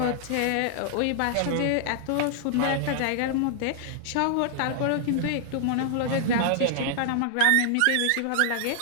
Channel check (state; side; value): different; both; correlation -0.01